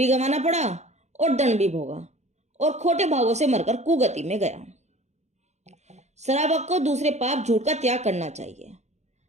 गंवाना पड़ा और दंड भी भोगा और खोटे भावों से मरकर कुगति में गया। श्रावक को दूसरे पाप झूठ का त्याग करना चाहिए।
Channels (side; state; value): left; late; 0.33 ms